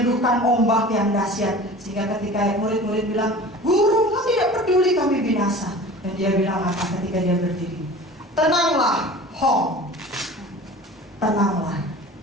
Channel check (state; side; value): normal; both; correlation 0.40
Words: ombak yang dahsyat. Sehingga ketika murid-murid bilang, Guru, kau tidak peduli kami binasa. Dan dia bilang apa ketika dia berdiri? Tenanglah, Hong. Tenanglah,